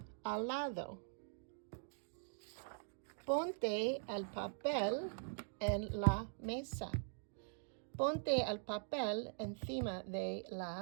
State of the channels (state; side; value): silent; left; digital silence